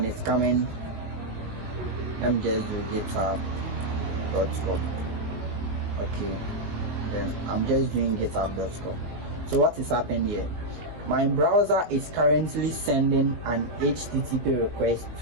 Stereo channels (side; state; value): left; late; 19 ms